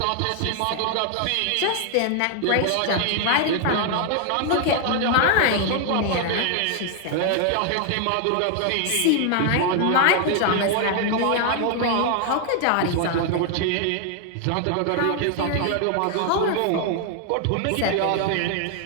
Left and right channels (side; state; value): both; different; correlation 0.00